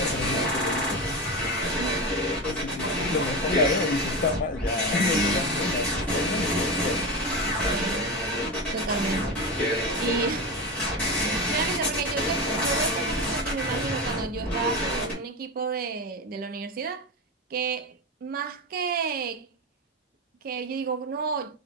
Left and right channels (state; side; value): normal; both; correlation 0.20